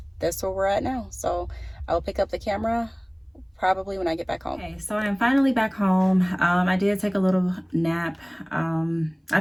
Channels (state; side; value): identical; both; correlation 1.00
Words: that's where we're at now. So I'll pick up the camera probably when I get back home. Okay, so I'm finally back home. I did take a little nap. I